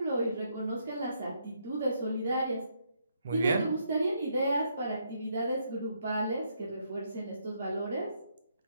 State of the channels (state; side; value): inverted; both; correlation -0.75